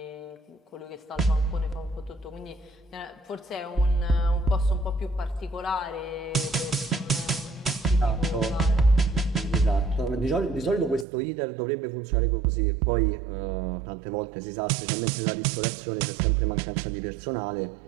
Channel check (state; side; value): drops out; left; at 11.1 s